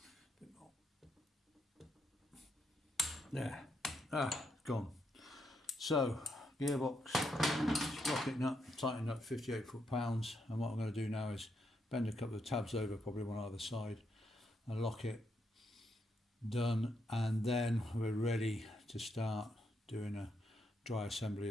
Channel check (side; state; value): both; normal; correlation 0.79